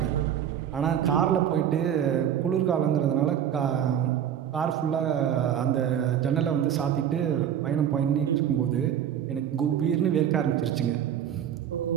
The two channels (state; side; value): quieter; left; 9.6 dB